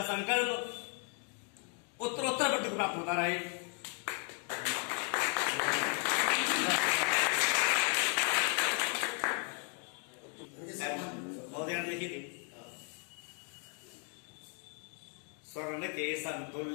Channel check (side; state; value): right; quieter; 37.5 dB